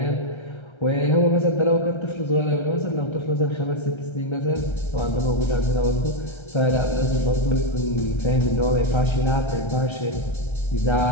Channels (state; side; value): late; right; 1.3 ms